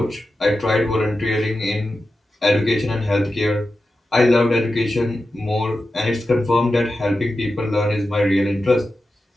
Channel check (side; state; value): both; normal; correlation 0.92